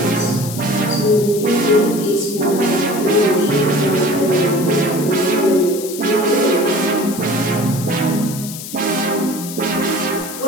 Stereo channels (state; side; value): noise; left; hiss, 11 dB below the sound